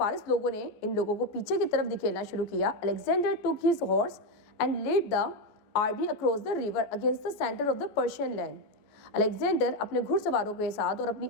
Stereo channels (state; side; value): late; right; 14 ms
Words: लोगों ने इन लोगों को पीछे की तरफ धकेलना शुरू किया, Alexander took his horse and led the army across the river against the center of the Persian land. Alexander अपने घुड़सवारों के साथ और अपनी